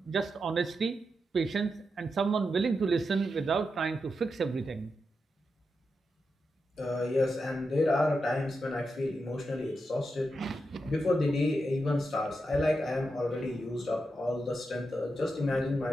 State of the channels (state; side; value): normal; both; correlation 0.87